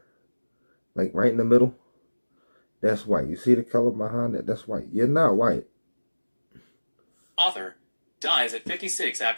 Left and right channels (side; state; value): both; inverted; correlation -1.00